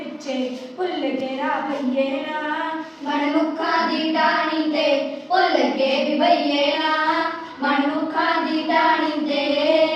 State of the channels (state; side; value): identical; both; correlation 1.00